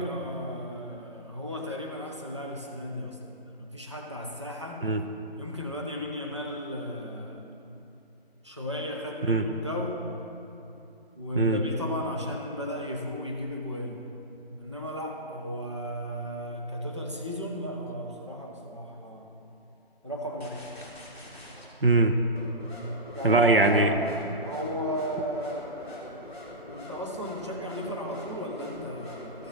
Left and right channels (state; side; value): normal; both; correlation -0.18